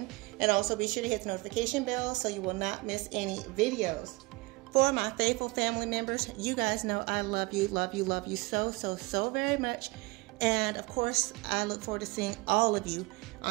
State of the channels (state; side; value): quieter; left; 23.5 dB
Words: and also be sure to hit the notification bell so you will not miss any videos. For my faithful family members, you guys know I love you so very much. And of course, I look forward to seeing all of you